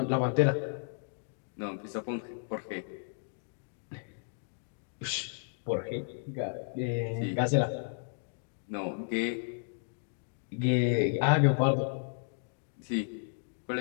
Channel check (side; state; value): right; silent; digital silence